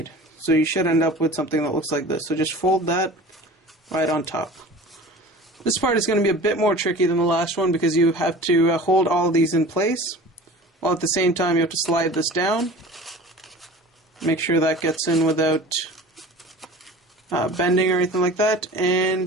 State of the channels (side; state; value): both; normal; correlation 0.40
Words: So you should end up with something that looks like this. So just fold that right on top. This part is going to be a bit more tricky than the last one because you have to hold all of these in place, while at the same time you have to slide this down. Make sure that gets in without bending or anything like that,